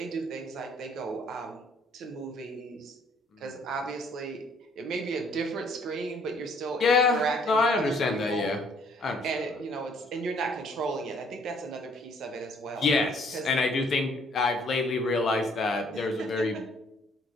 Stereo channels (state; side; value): normal; both; correlation 0.62